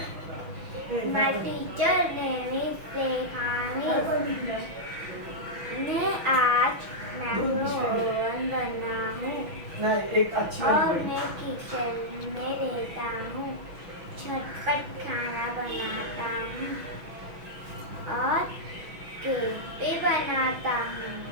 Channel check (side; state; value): left; late; 6.1 ms